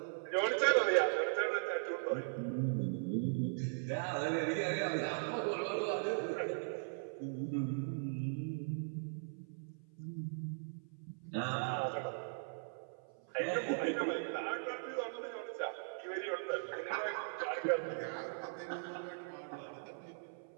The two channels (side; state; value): left; silent; 52 dB below the other